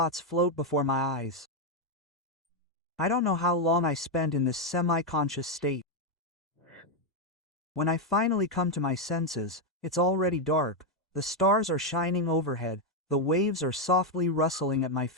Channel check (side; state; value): both; normal; correlation 0.03